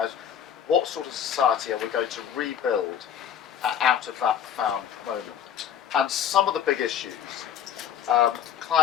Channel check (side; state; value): right; quieter; 9.1 dB